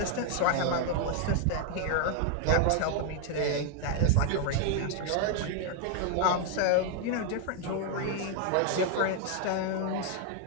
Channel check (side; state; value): both; different; correlation 0.01